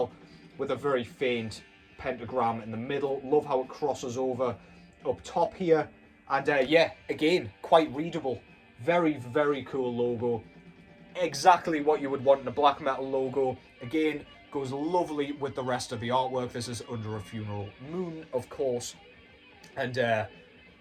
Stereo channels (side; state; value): both; identical; correlation 1.00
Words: with a very faint pentagram in the middle. Love how it crosses over up top here And yeah, again, quite readable. Very, very cool logo. Exactly what you would want in a black metal logo. Again, goes lovely with the rest of the artwork. This is Under a Funeral Moon, of course. And